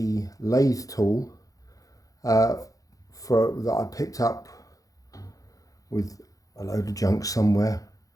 lathe tool that I picked up with a load of junk somewhere.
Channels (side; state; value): right; late; 0.17 ms